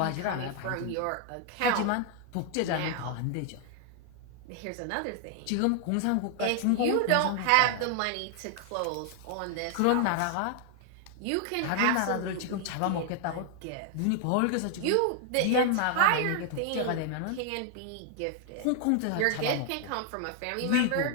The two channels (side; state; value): both; different; correlation 0.00